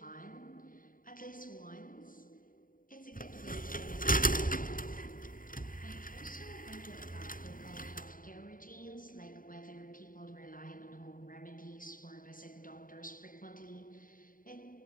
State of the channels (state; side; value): late; right; 0.40 ms